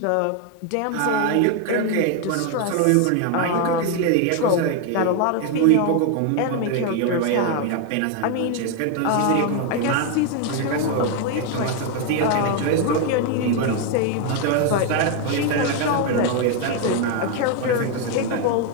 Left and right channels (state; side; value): different; both; correlation 0.01